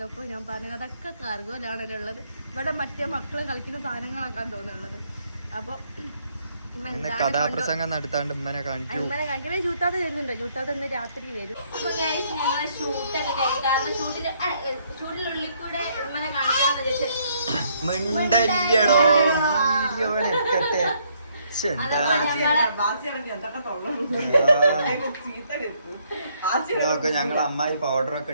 ഞാൻ പറഞ്ഞു അതൊക്കെ കാർഗോയിലാണല്ലോ ഉള്ളത്. ഇവിടെ മറ്റേ മക്കൾ കളിക്കുന്ന സാധനങ്ങളാക്കാൻ തോന്നുന്നുള്ളത്. അപ്പോൾ കഥാപ്രസംഗം നടത്താണ്ട് ഉമ്മനെ കാണിക്കണേ. ജൂത്താതെ വരുന്നുണ്ടോ? ജൂത്താതെ ഇന്ന് രാത്രി വരും. ഞങ്ങളെ ഷൂട്ടൊക്കെ കഴിഞ്ഞു. കാരണം ഷൂട്ടിനുള്ളിൽ കൂടെ ഉമ്മനെ കാണിക്കാന്ന് ഞങ്ങൾ അമ്മായി പൗഡർ ഒക്കെ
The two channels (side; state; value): both; inverted; correlation -0.69